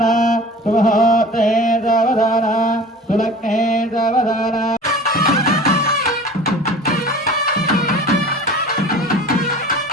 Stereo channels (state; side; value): normal; both; correlation 0.41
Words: सुमुहूर्ते सावधान सुलग्ने सावधान